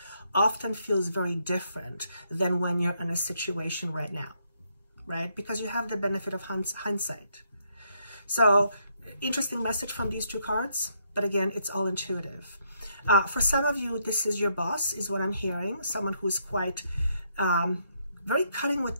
often feels very different than when you're in a situation right now, right? Because you have the benefit of hindsight. So, interesting message from these two cards, but again, it's all intuitive. For some of you, this is your boss, is what I'm hearing. Someone who's quite very cutting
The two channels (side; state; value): both; inverted; correlation -0.74